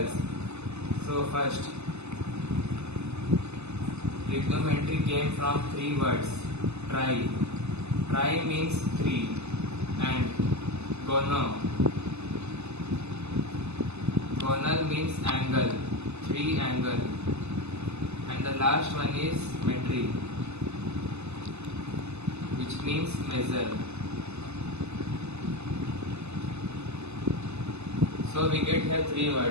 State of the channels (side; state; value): left; late; 0.80 ms